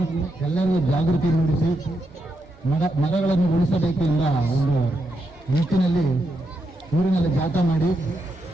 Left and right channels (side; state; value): both; normal; correlation 0.82